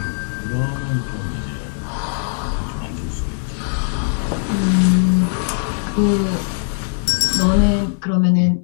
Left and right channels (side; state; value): right; silent; 66 dB below the other